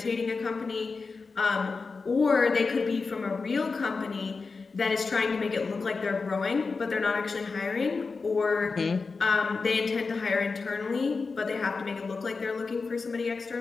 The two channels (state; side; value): quieter; right; 4.4 dB